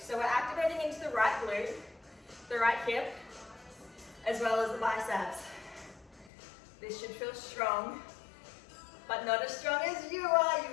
we're activating into the right glute, the right hip, as well as the biceps. This should feel strong, but not as strong as you are. You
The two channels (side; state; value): right; drops out; at 6.3 s